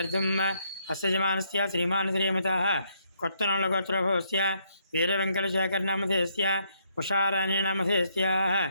हस्यजमानस्य श्रीमान् श्रीमतः कोत्तनोळगोत्रभवस्य वीरवेङ्कटशेखरनामधेयस्य उषाराणीनामधेयस्याः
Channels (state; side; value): inverted; both; correlation -0.73